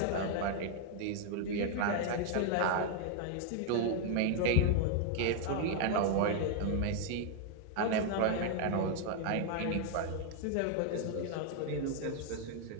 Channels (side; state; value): both; different; correlation 0.00